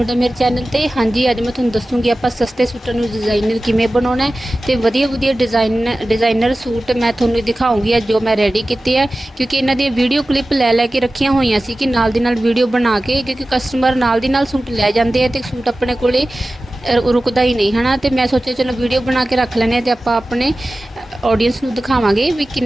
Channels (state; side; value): normal; both; correlation 0.96